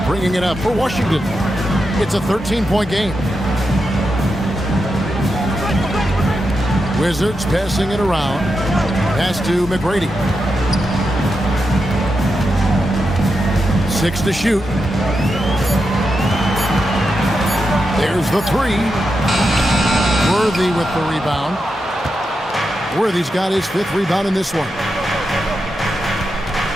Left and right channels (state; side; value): normal; both; correlation 0.87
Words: bringing it up for Washington. It's a 13-point game. Wizards passing it around. Pass to McGrady. 6 to shoot. There's the 3. Worthy with the rebound. Worthy's got his 5th rebound in this one.